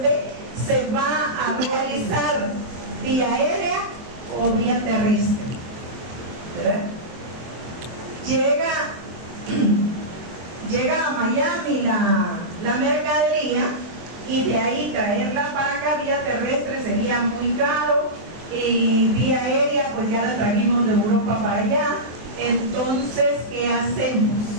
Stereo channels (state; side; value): late; left; 23 ms